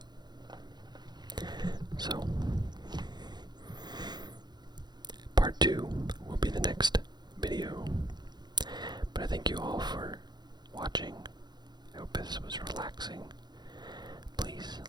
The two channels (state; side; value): late; left; 0.21 ms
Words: So, part 2 will be the next video. But I thank you all for watching. I hope this was relaxing. Please